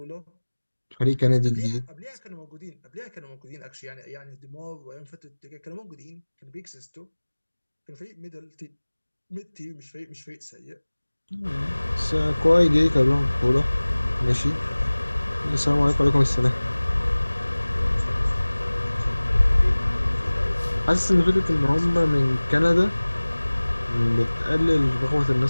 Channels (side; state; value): both; inverted; correlation -1.00